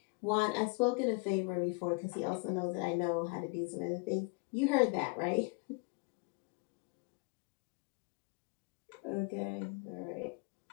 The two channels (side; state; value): right; quieter; 30.8 dB